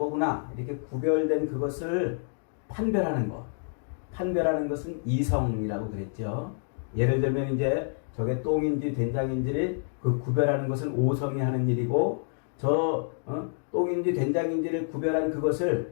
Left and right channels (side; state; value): right; silent; digital silence